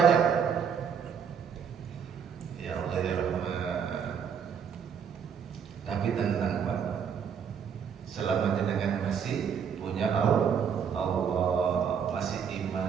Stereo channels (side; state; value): left; quieter; 7.3 dB